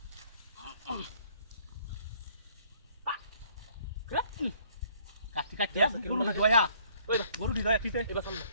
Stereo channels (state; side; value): inverted; both; correlation -0.61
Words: কাটি কাটি গরু দয়া গরু দি দয়া ঠিক আছে এবার সামনে